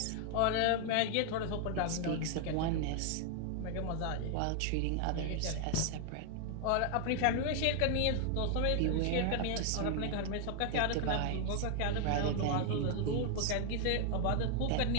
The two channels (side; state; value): both; different; correlation 0.00